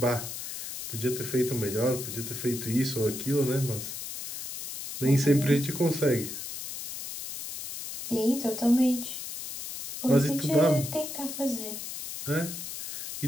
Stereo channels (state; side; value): noise; left; hiss, 8 dB below the sound